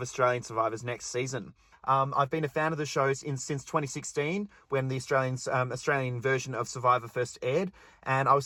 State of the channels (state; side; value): identical; both; correlation 1.00